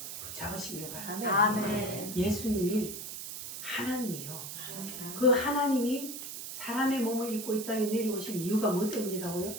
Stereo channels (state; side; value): noise; right; hiss, 8 dB below the sound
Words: 붙잡으시길 바랍니다. 예수님이 하나님이요. 그 하나님이 사람의 몸을 입고 이 땅에 내려오신 이유가 뭐 때문이라고요?